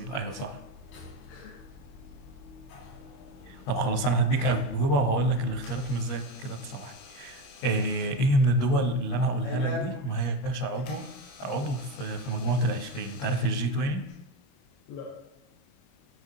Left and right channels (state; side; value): late; right; 21 ms